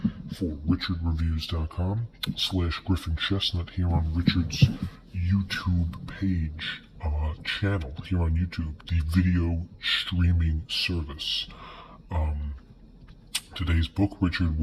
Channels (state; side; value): identical; both; correlation 1.00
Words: for richardreviews.com/Griffin Chestnut here on Richard's YouTube page, channel here on YouTube, the video streaming service. Today's book Richard